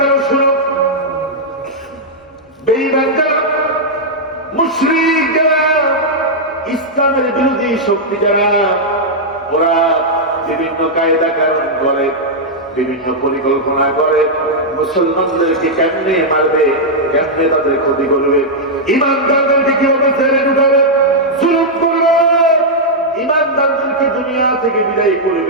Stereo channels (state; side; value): normal; both; correlation -0.06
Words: শুনো, বেঈমান যারা, মুশরিক যারা, ইসলামের বিরোধী শক্তি যারা, ওরা বিভিন্ন কায়দা কানুন করে, বিভিন্ন পরিকল্পনা করে, মুসলমানদেরকে কেমনে মারবে, কেমনে তাদের ক্ষতি করবে, ইমানদারদেরকে কিভাবে ছেড়ে ঢুকাবে, জুলুম করবে, ইমানদারদেরকে দুনিয়া থেকে বিদায়